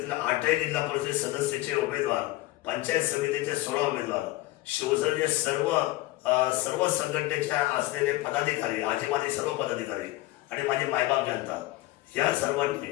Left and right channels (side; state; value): right; quieter; 18.7 dB